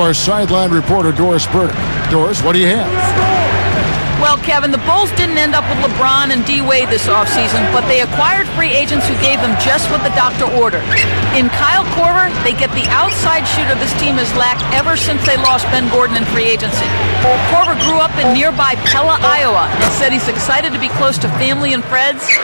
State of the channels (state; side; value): inverted; both; correlation -1.00